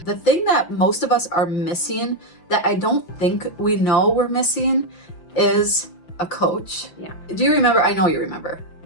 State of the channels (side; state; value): right; late; 5.8 ms